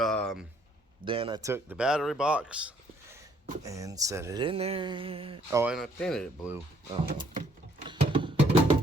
I took the battery box and set it in there. Oh, and I painted it blue. Oh,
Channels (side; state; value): both; normal; correlation 0.65